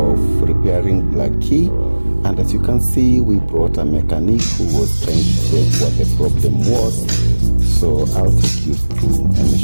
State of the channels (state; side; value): inverted; both; correlation -1.00